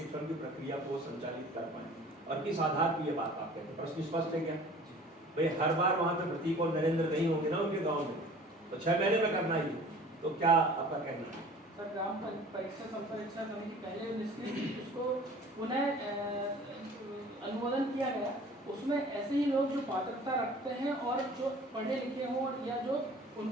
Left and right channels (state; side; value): normal; both; correlation 0.46